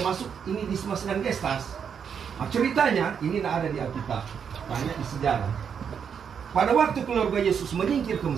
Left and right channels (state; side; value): quieter; left; 7.2 dB